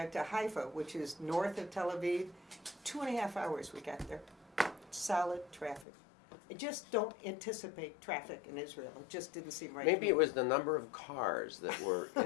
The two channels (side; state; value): right; drops out; at 5.9 s